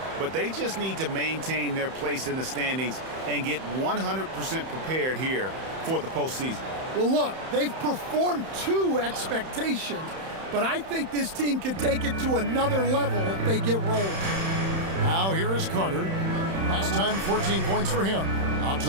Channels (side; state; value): left; late; 31 ms